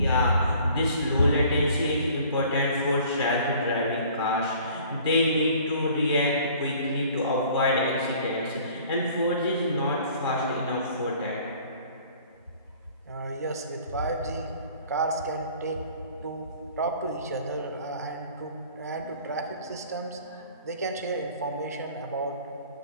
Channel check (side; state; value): both; inverted; correlation -0.52